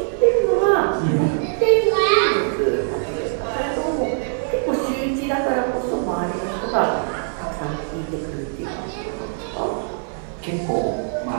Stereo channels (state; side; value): silent; left; digital silence